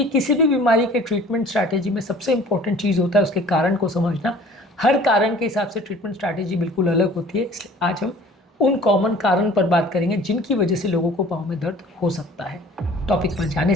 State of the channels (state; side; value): normal; both; correlation 0.49